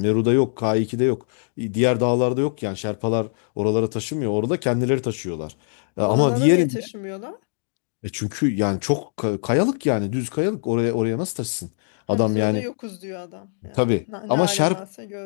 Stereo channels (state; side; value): silent; right; digital silence